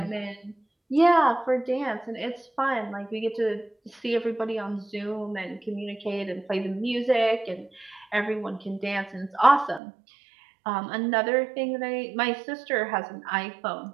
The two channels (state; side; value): drops out; left; at 9.8 s